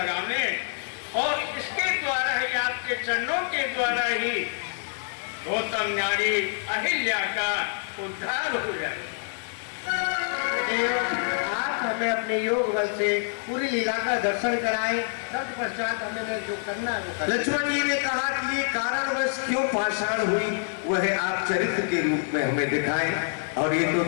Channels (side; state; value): right; silent; 59 dB below the other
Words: और इसके द्वारा ही, आपके चरणों के द्वारा ही गौतम नारी अहिल्या का उद्धार हो जाए। आप हमें अपने योग बल से पूरी लीला का दर्शन कराएं, तत्पश्चात हमें जो करना है वो करें। लक्ष्मण जी ने कहा कि ये कारणवश क्यों पाषाण हुई वह आप चरित्र के रूप में हमें दिखाएं, और ये तो